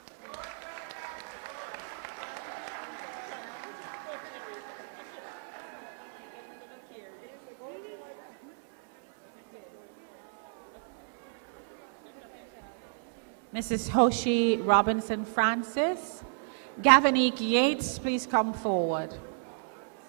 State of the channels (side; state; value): left; silent; 56 dB below the other